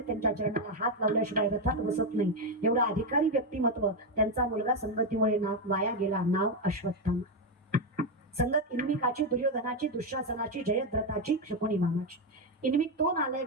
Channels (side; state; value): both; normal; correlation 0.06